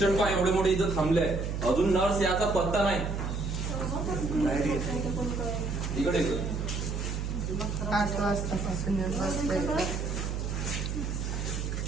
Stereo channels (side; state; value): right; noise; hum, 2 dB below the sound